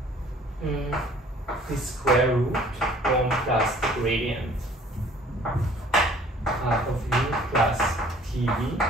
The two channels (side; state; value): both; normal; correlation 0.54